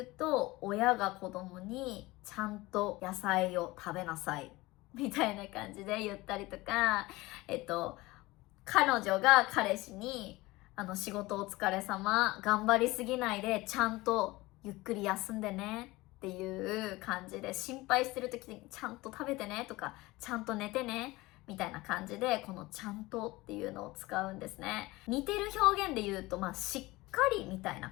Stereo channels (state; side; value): quieter; right; 20.5 dB